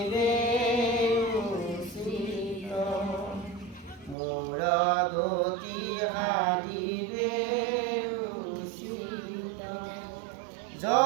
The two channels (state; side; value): drops out; left; at 4.2 s